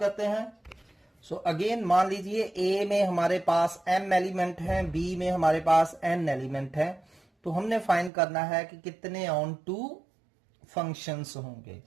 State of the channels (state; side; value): drops out; left; at 8.1 s